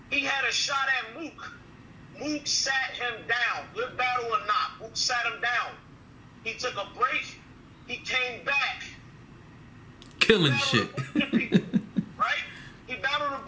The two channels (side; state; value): both; identical; correlation 1.00